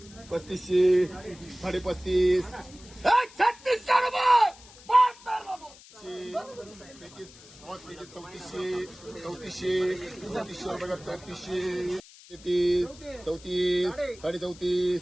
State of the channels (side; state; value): left; noise; hiss, 21 dB below the sound